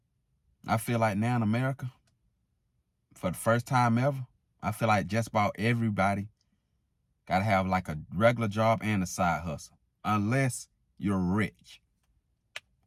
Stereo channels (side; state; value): both; identical; correlation 1.00